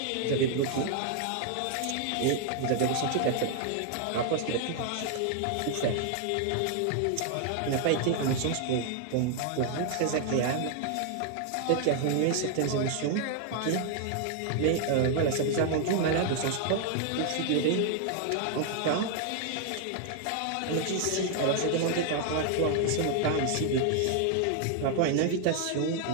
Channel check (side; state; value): both; different; correlation 0.00